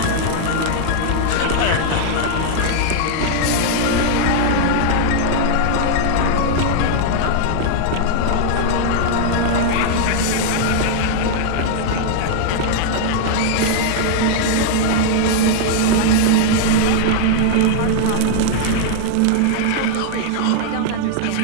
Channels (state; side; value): different; both; correlation -0.01